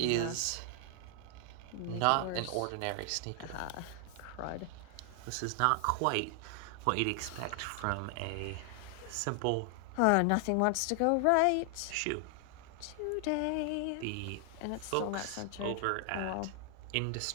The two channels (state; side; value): different; both; correlation 0.00